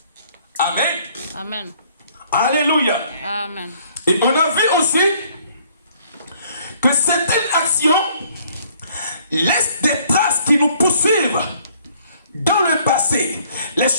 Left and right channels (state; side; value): inverted; both; correlation -0.61